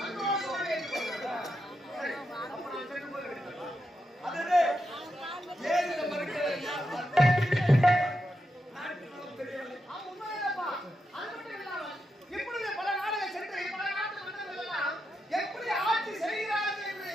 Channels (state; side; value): normal; both; correlation 0.85